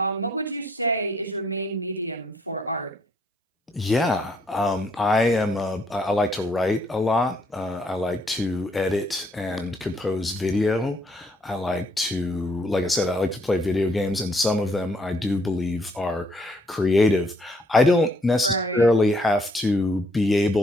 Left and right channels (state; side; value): normal; both; correlation 0.68